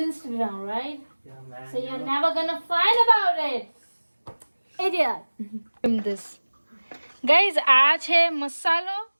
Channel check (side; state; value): both; inverted; correlation -1.00